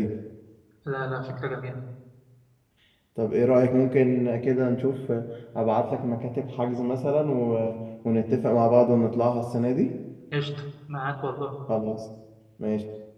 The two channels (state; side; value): identical; both; correlation 1.00